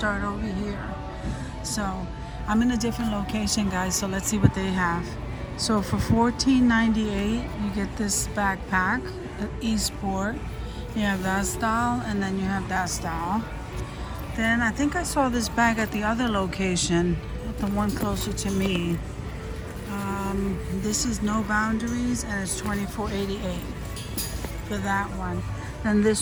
over here. So I'm in a different location, guys, so let's see what they have. So for $14.98 you get this backpack, Esport. You have that style and then you have that style. Then I think I saw this bag at the other location, the one closer to me. This is No Boundaries and it's $24.88 for that one. Then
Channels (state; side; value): identical; both; correlation 1.00